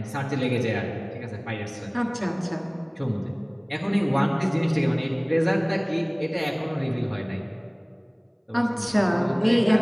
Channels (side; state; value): both; identical; correlation 1.00